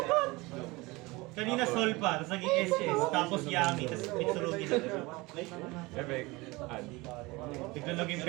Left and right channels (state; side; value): quieter; left; 23.0 dB